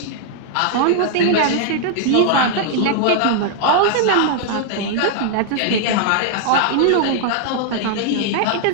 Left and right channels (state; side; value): different; both; correlation 0.00